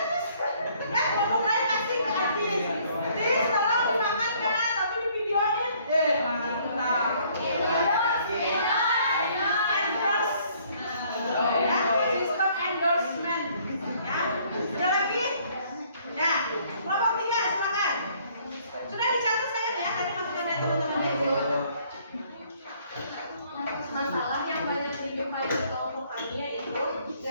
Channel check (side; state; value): both; inverted; correlation -0.62